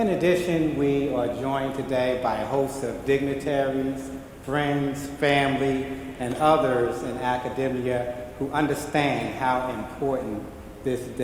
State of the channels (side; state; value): both; identical; correlation 1.00